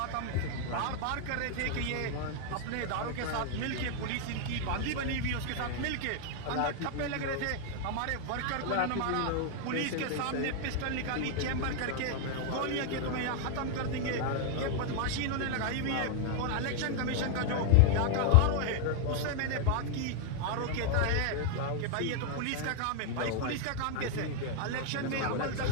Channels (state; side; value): different; both; correlation 0.00